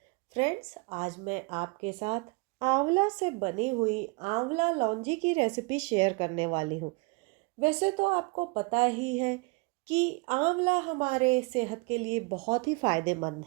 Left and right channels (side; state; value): left; quieter; 28.7 dB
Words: फ्रेंड्स। आज मैं आपके साथ आंवला से बनी हुई आंवला लौंजी की रेसिपी शेयर करने वाली हूँ। वैसे तो आपको पता ही है कि आंवला हमारे सेहत के लिए बहुत ही फायदेमंद